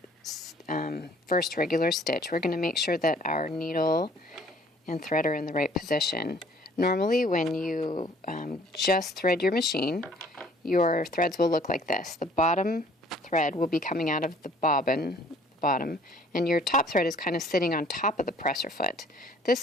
first regular stitch, we're going to make sure that our needle and thread are in the right position. Normally when you just thread your machine, your threads will look like this. The bottom thread will be coming out of the bobbin, bottom, and your top thread is kind of sitting on top of the presser foot.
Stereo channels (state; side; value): normal; both; correlation 0.56